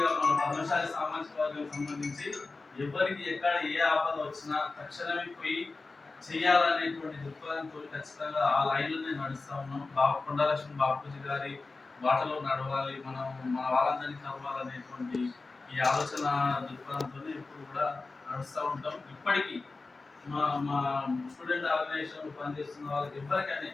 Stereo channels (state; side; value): quieter; right; 3.7 dB